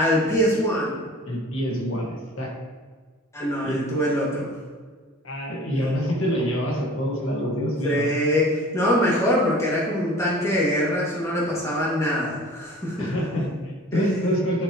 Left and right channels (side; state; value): both; normal; correlation 0.45